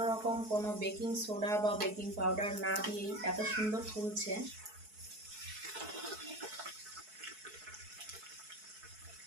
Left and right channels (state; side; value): late; left; 4.6 ms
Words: রকম কোনো বেকিং সোডা বা বেকিং পাউডার না দিয়েই এত সুন্দর ফুলছে।